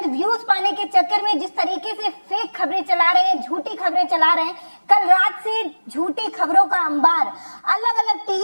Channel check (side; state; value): both; inverted; correlation -1.00